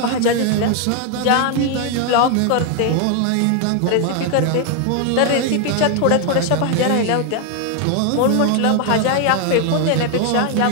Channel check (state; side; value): different; both; correlation 0.00